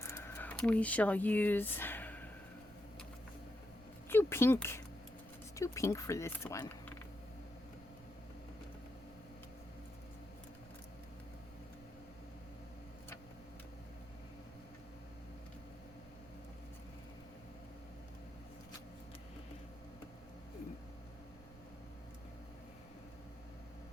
We shall use pink. Let's do pink for this one.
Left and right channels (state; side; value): noise; right; rumble, 19 dB below the sound